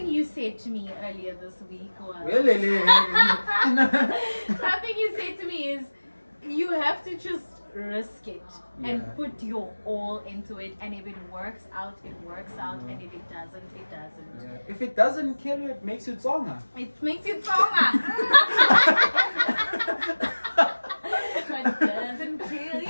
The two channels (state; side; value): inverted; both; correlation -1.00